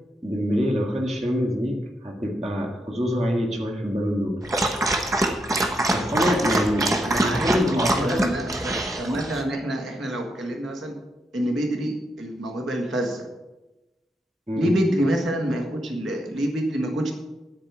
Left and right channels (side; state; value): both; normal; correlation 0.81